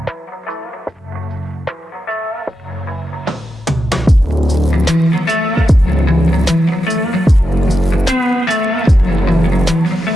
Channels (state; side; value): normal; both; correlation 0.87